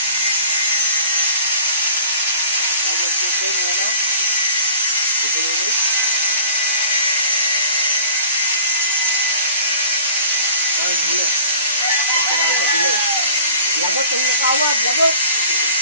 Lagot yung nakawad, lagot.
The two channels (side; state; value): both; inverted; correlation -0.46